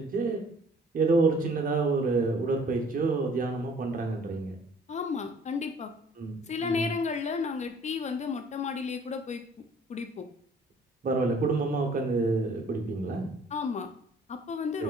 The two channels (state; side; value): normal; both; correlation 0.56